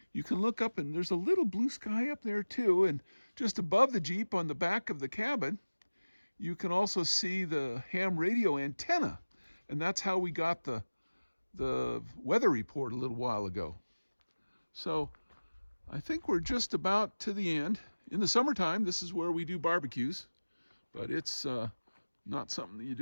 you can look up and there's a little blue sky up there too, and just above the Jeep on the back of the cabin, you can also see the ham radio antenna, and that's how we got the weather report a little while ago. So I think we're just about to the end. In the summertime, this is where we do barbecues, but it's not something that you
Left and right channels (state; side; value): inverted; both; correlation -1.00